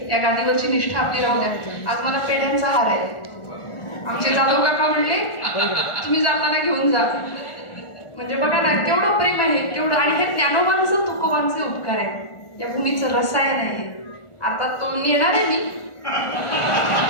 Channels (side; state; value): right; late; 1.4 ms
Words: या गादीवरची निष्ठा आपली राहू द्या. आज मला पेढ्यांचा हार आहे. आमचे जाधव काका म्हणले तुम्ही जाताना घेऊन जा. म्हणजे बघा ना केवढं प्रेम आहे, केवढं. आणि हे ज्ञानोबांचं तुकोबांचे उपकार आहेत, या भूमीचं रसायन आहे. आता तो नेणार आहे मी.